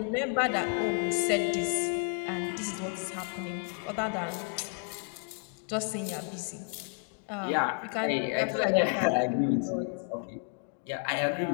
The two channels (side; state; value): right; quieter; 39.1 dB